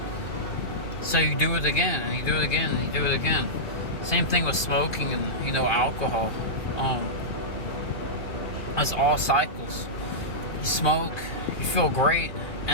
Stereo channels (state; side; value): late; right; 2.4 ms